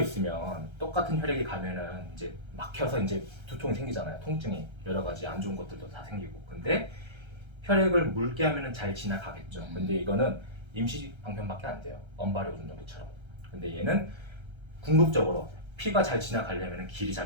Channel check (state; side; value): late; left; 1.3 ms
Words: 똑같은 혈액이 가면은 이제 막혀서 이제 두통이 생기잖아요. 통증이 여러 가지 안 좋은 것들도 다 생기고. 근데 혈액을 묽게 하면은 잘 지나가겠죠. 근데 이거는 임시 방편밖에 안 돼요. 언발의 오줌정기처럼. 근데 얘는 궁극적으로 피가 잘 지나가려면 길이